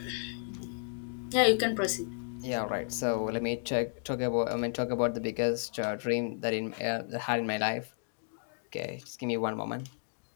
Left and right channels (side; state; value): right; silent; digital silence